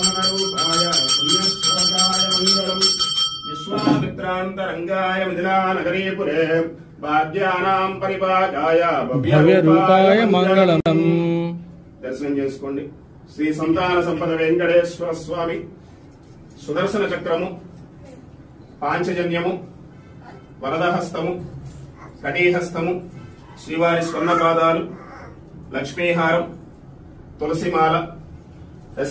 पुण्यश्लोकाय मङ्गलम् विश्वामित्रान्तरङ्गाय मिथिलानगरीपुरे భాగ్యానాం పరిపాకాయ భవ్యరూపాయ మంగళం। దర్శనం చేసుకోండి। శ్రీ సంతాన సంపద వెంకటేశ్వర స్వామి సుదర్శన చక్రము, పాంచజన్యము, వరదహస్తము, కటీహస్తము, శ్రీవారి స్వర్ణపాదాలు, లక్ష్మీహారం, తులసిమాల,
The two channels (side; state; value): both; identical; correlation 1.00